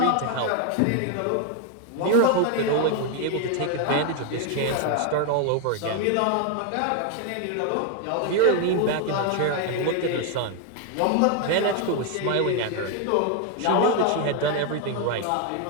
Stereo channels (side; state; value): both; different; correlation 0.01